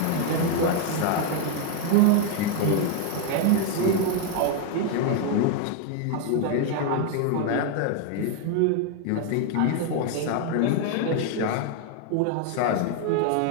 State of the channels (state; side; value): different; both; correlation 0.01